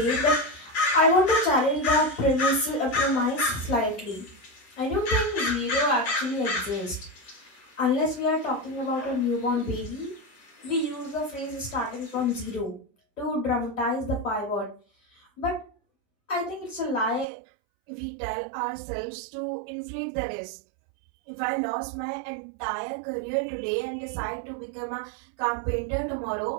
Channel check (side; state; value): left; drops out; at 17.2 s